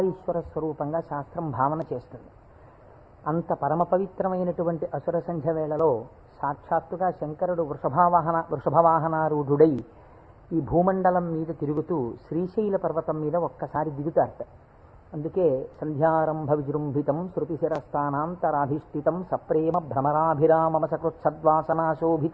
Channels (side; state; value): both; identical; correlation 1.00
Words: స్వరూపంగా శాస్త్రం భావన చేస్తుంది. అంత పరమ పవిత్రమైనటువంటి అసుర సంధ్య వేళలో సాక్షాత్తుగా శంకరుడు వృషభవాహనారూఢుడై ఈ భూమండలం మీద తిరుగుతూ శ్రీశైల పర్వతం మీద ఒక్కసారి దిగుతారట. అందుకే సంధ్యారంభ విజృంభితం శృతిశిరస్థానాంతరాధిష్ఠితం సప్రేమ